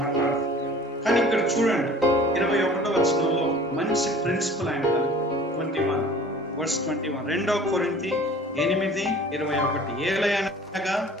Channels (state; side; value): normal; both; correlation 0.47